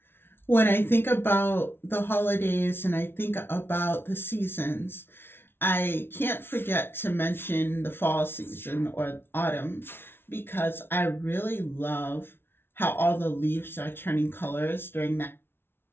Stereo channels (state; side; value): late; right; 0.11 ms